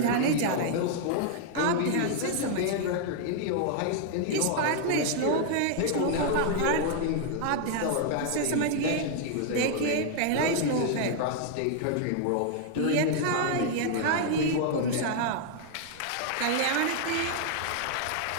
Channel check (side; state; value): both; different; correlation 0.00